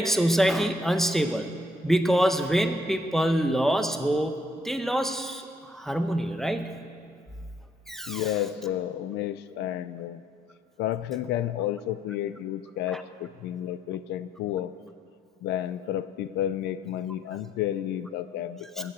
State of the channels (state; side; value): normal; both; correlation 0.69